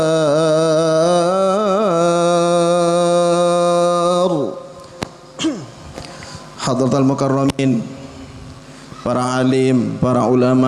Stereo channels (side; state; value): both; identical; correlation 1.00